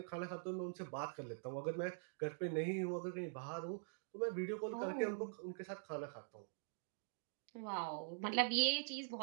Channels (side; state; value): left; silent; digital silence